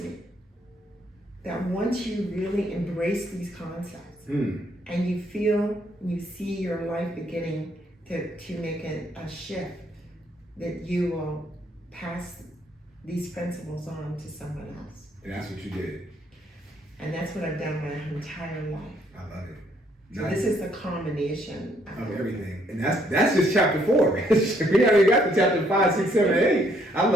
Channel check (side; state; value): both; normal; correlation 0.69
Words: that once you really embrace these concepts and you feel, you see your life beginning to make a shift, that you will pass these principles on to someone else. And that's what you did. And that's what I've done my entire life. I love it. So this is the combination of everything. And that's just chapter 4. We already got to chapter 5, 6, 7, 8. I